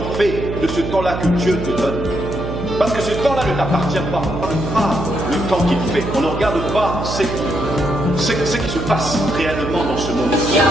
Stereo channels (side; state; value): right; noise; hum, 5 dB below the sound